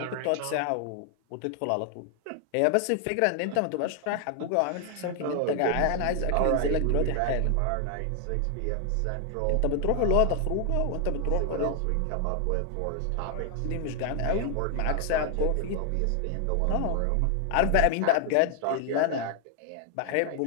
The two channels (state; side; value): different; both; correlation 0.00